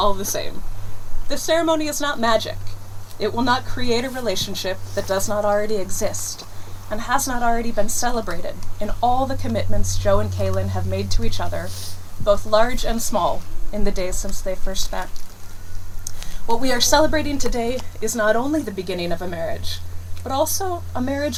the same. This ceremony is not magic. It will not create a relationship that does not already exist and has not already been celebrated in all the commitments Joe and Kaylin have made to each other, both large and small, in the days since they first met. What we are celebrating today is not only the beginning of a marriage, but also a marriage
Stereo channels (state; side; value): identical; both; correlation 1.00